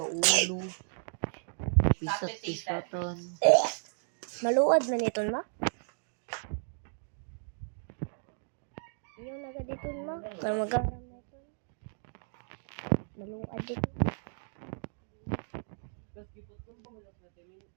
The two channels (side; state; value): left; silent; digital silence